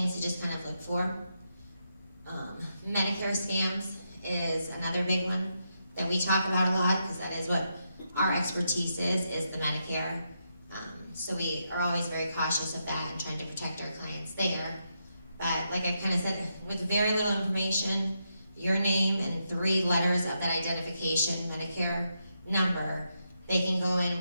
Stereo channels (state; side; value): inverted; both; correlation -0.83